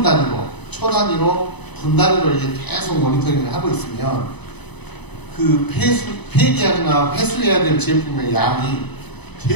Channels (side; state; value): right; late; 0.99 ms